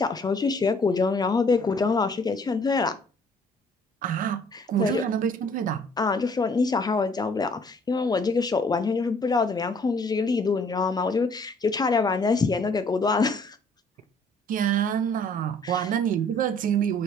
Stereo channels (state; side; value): normal; both; correlation 0.59